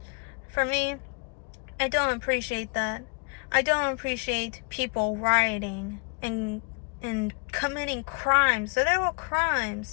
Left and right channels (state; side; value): quieter; right; 33.4 dB